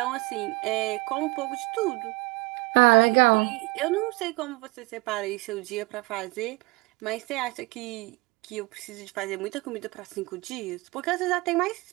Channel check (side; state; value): left; quieter; 25.1 dB